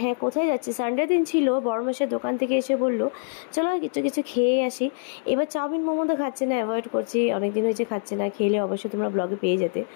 হ্যাঁ, কোথায় যাচ্ছি? সানডে দিন ছিল। বড় মাসের দোকান থেকে এসে বলল চলো কিছু কিছু খেয়ে আসি। এবার চাউমিন মোমো তো খাচ্ছি না, অ্যাভয়েড করছি, অনেকদিন হয়েছে খাচ্ছি না। খেলে অবশ্যই তোমরা ব্লগে পেয়ে যেতে।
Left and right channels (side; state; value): right; silent; digital silence